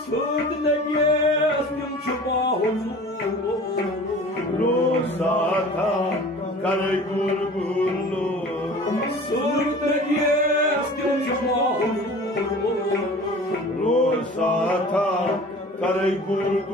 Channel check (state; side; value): normal; both; correlation 0.42